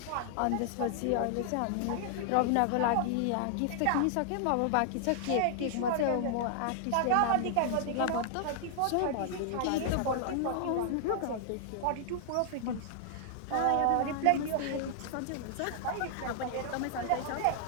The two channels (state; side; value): different; both; correlation -0.01